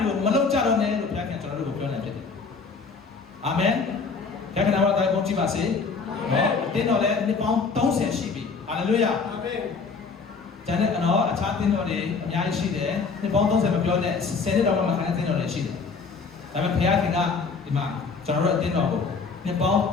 ွေကိုမလုပ်ကြတော့နဲ့လို့ဘုရားကကျွန်တော်တို့ကိုပြောနေဖြစ်တယ်။အာမင်။ဘုရားကနာမတော်ကိုကြည့်ပါစေ။နော်တင်းတော်လည်းနှစ်ပေါင်း30ရှိပြီ။ဟာလေလုယာ။အာမင်။ကျန်တဲ့နော်အခြားတင်းတော်တွေအများကြီးရှိတယ်။နှစ်ပေါင်း30မပြောနဲ့10နှစ်တော့မှခံတဲ့တင်းတော်တွေရှိတယ်။ဒါပေမဲ့ဘုရားခင်ကဒီမှာကျွန်တော်တို့အတင်းတော်ကိုနှစ်ပေါင်း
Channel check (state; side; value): quieter; right; 4.9 dB